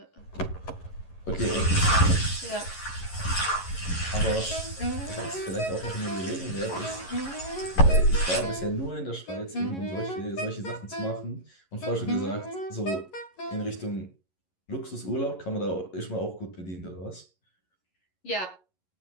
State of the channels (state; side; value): late; right; 11 ms